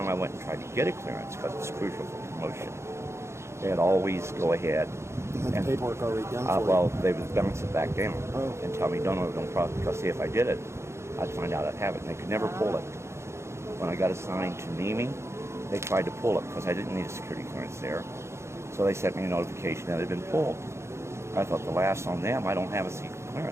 I went and tried to get a clearance, because it's crucial for promotion, they'd always go ahead. You had the paperwork already done for you. Well, they would bounce it back down and tell me, don't problem, because see, if I did it, I'd find out I'd have it. And they could never pull it. When I got assigned to Nemi, they tried to pull it because I didn't need a security clearance there. So they sent me a notification that it had been pulled. I thought the last on them, I don't have a secret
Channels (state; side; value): late; left; 0.13 ms